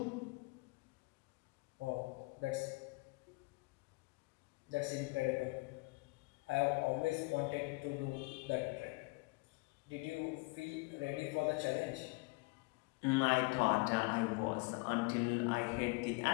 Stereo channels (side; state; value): right; quieter; 26.9 dB